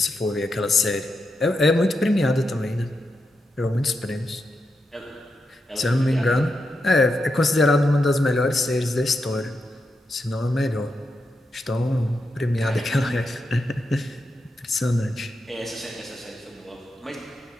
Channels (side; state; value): both; normal; correlation 0.86